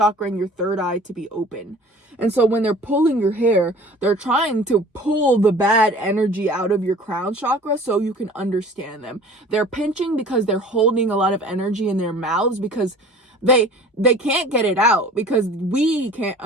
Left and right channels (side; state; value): both; normal; correlation 0.45